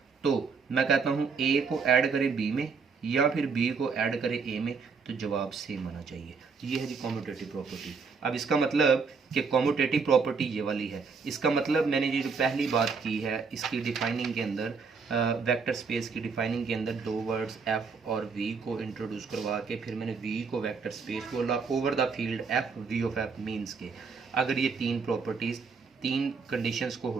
तो मैं कहता हूँ a को ऐड करें b में या फिर b को ऐड करें a में, तो जवाब सेम आना चाहिए। ये है जी कम्यूटेटिव प्रॉपर्टी। अब इसका मतलब कि कम्यूटेटिव प्रॉपर्टी ये वाली है। इसका मतलब मैंने ये जो पहली बात की है इसकी डिफाइनिंग के अंदर वेक्टर स्पेस की डिफाइनिंग के अंदर दो वर्ड्स एफ और वी को इंट्रोड्यूस करवा के फिर मैंने वी को वेक्टर स्पेस बोला over the field F V of F means के अगर ये तीन प्रॉपर्टीज़ तीन कंडीशंस को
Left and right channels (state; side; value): quieter; left; 5.2 dB